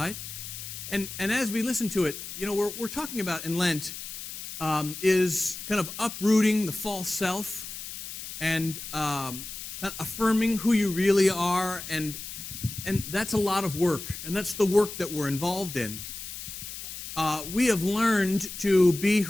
And as we listen to it, we're talking about in Lent is kind of uprooting the false self and affirming who you really are. And that's a lot of work. And that's the work that we're involved in. We have learned to be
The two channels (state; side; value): noise; left; hiss, 9 dB below the sound